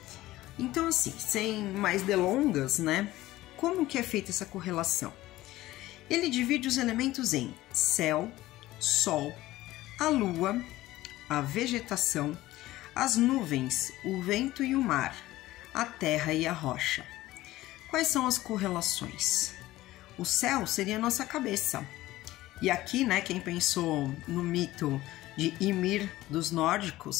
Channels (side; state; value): right; quieter; 16.6 dB